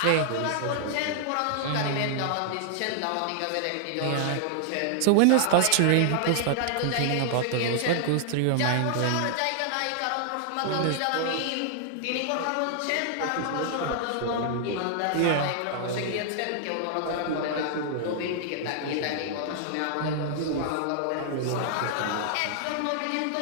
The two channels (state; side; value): different; both; correlation -0.01